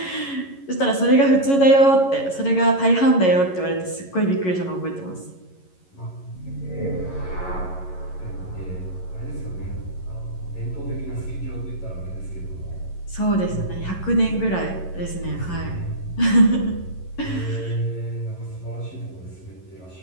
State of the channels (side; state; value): right; late; 11 ms